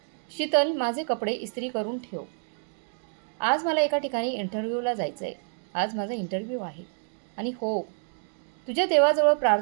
शीतल, माझे कपडे इस्त्री करून ठेव. आज मला एका ठिकाणी इंटरव्ह्यूला जायचं आहे. आज माझा इंटरव्ह्यू आहे. आणि हो, तुझ्या देवाजवळ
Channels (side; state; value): left; silent; digital silence